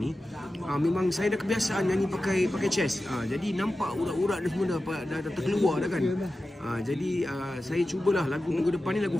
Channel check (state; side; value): normal; both; correlation 0.94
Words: memang saya dah kebiasaan nyanyi pakai chest. Jadi nampak urat-urat ni semua dah terkeluar dah kan. Jadi saya cubalah lagu minggu depan ni lagu